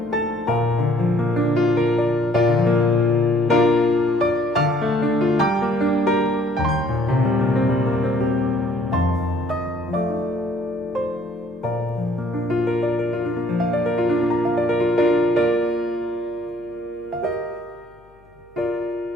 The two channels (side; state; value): left; noise; hum, 30 dB below the sound